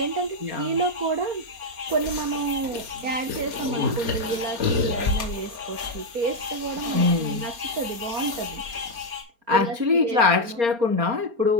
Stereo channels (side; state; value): left; late; 4.3 ms